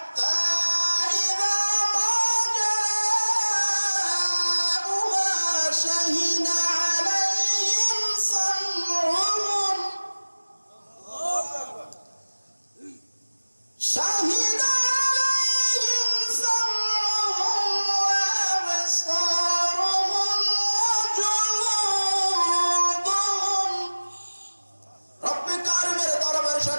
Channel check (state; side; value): inverted; both; correlation -1.00